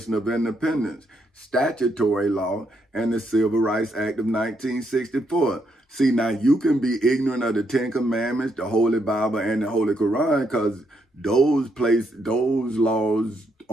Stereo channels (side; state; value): both; normal; correlation 0.77